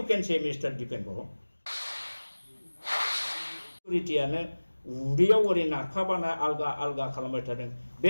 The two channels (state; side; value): inverted; both; correlation -1.00